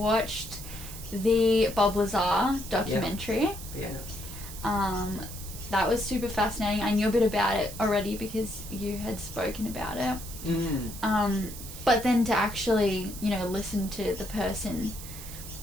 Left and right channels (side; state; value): right; noise; hiss, 12 dB below the sound